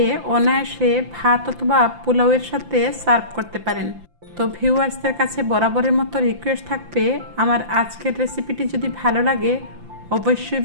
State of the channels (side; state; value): left; late; 5.8 ms